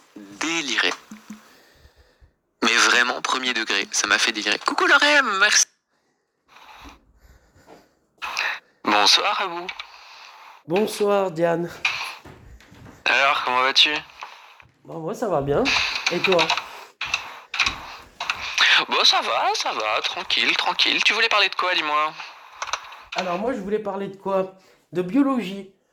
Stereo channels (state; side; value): identical; both; correlation 1.00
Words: délirer. Mais vraiment, premier degré, ça m'a fait délirer. Coucou Lorem, merci. Bonsoir à vous. Bonsoir Diane. Alors, comment vas-tu? Bon, moi ça va bien. Et toi? Bon, ça va, tranquille. Tu voulais parler de quoi, dis-moi? Alors moi je voulais parler de quoi? De biologie.